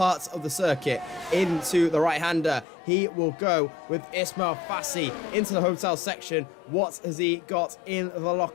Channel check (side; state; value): right; drops out; at 2.7 s